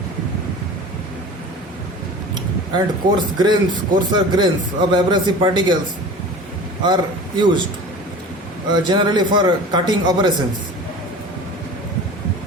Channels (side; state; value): both; normal; correlation 0.38